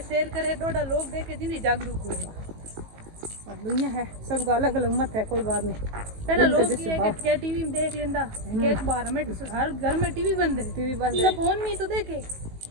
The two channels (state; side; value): late; left; 19 ms